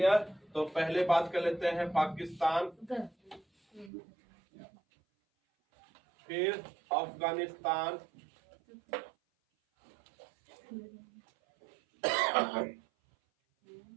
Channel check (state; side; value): drops out; left; at 3.9 s